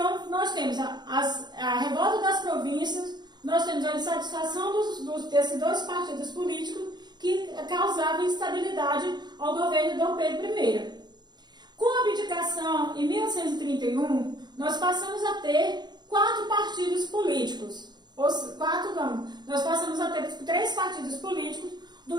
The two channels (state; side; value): late; left; 0.21 ms